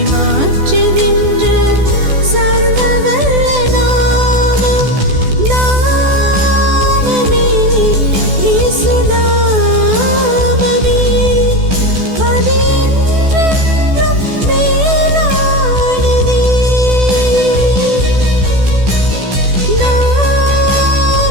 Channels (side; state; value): left; late; 14 ms